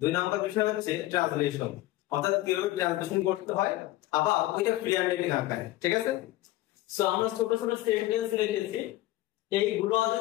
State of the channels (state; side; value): quieter; right; 16.6 dB